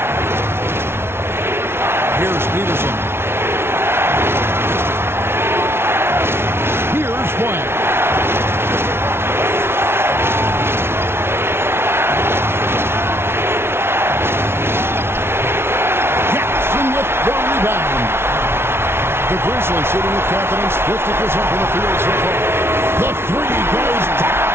Here's Peterson. Here's White. The rebound. The Grizzlies shooting with confidence, 50% from the field so far. The three goes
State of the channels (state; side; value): late; left; 0.12 ms